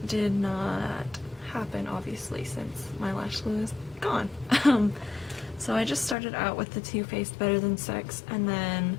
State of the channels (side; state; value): right; drops out; at 6.2 s